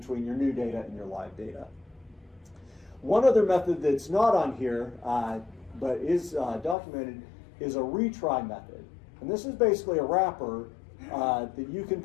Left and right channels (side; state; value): right; drops out; at 6.8 s